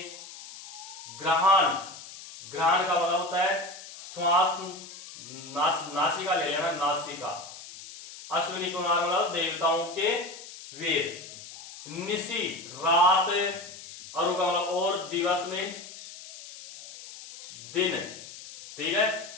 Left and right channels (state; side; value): noise; left; hiss, 14 dB below the sound